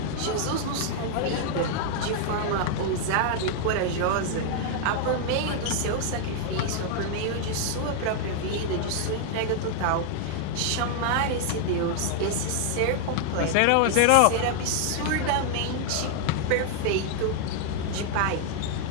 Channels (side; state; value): both; different; correlation 0.00